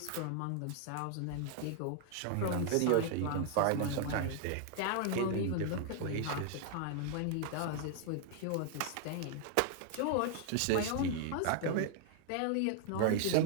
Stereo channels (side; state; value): both; different; correlation 0.00